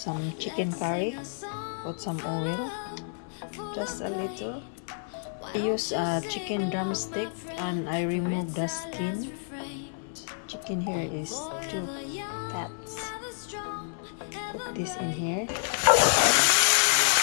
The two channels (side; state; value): right; silent; digital silence